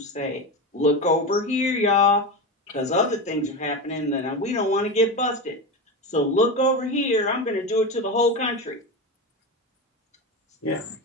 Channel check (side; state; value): both; normal; correlation 0.20